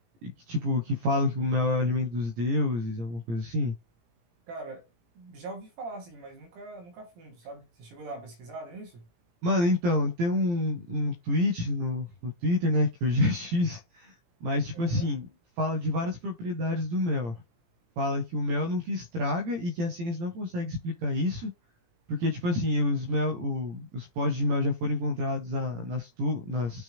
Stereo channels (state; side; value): late; left; 17 ms